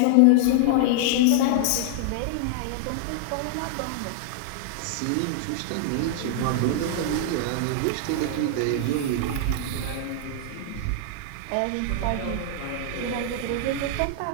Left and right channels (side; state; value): both; different; correlation -0.01